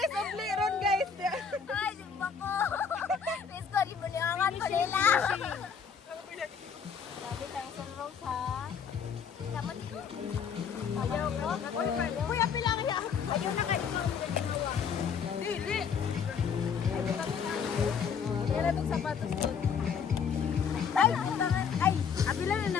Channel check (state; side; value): quieter; right; 6.6 dB